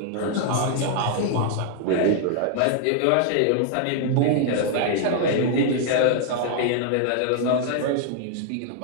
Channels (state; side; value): different; both; correlation -0.01